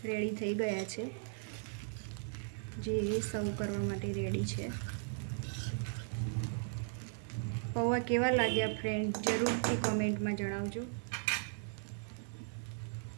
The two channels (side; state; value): left; silent; digital silence